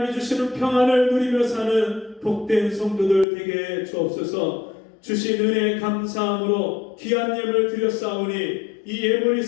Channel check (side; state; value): right; drops out; at 3.2 s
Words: 주시는 평안을 누리며 사는 복된 성도들 되게 주옵소서. 주신 은혜에 감사함으로 귀한 예물을 드렸사오니 이 예물이